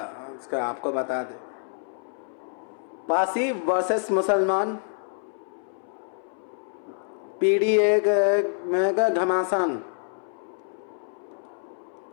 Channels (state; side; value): silent; right; 60 dB below the other